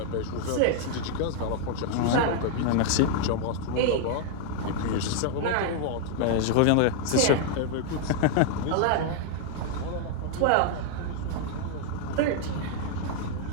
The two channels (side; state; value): both; different; correlation 0.00